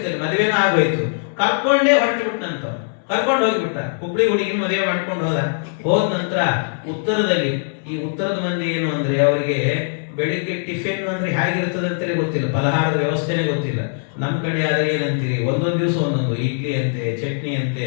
ಮದುವೆನೂ ಆಗೋಯ್ತು. ಕರ್ಕೊಂಡೇ ಹೊರಟುಬಿಟ್ನಂತ, ಕರ್ಕೊಂಡು ಹೋಗ್ಬಿಟ್ಟ. ಹುಬ್ಳಿ ಹುಡುಗಿನ ಮದುವೆ ಮಾಡ್ಕೊಂಡು ಹೋದ ನಂತರ ಉತ್ತರದಲ್ಲಿ, ಈ ಉತ್ತರದ ಮಂದಿ ಏನು ಅಂದ್ರೆ, ಅವರಿಗೆ ಬೆಳಿಗ್ಗೆ ಟಿಫಿನ್ ಅಂದ್ರೆ ಹೇಗಿರ್ತದೆ ಅಂತಲೇ ಗೊತ್ತಿಲ್ಲ, ಫಲಹಾರದ ವ್ಯವಸ್ಥೆನೇ ಗೊತ್ತಿಲ್ಲ. ನಮ್ಮ ಕಡೆ ಆದ್ರೆ ಏನಂತೀರಿ, ಒಂದೊಂದು ದಿವಸ ಒಂದೊಂದು ಇಡ್ಲಿ ಅಂತೆ, ಚಟ್ನಿ ಅಂತೆ,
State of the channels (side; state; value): right; silent; 65 dB below the other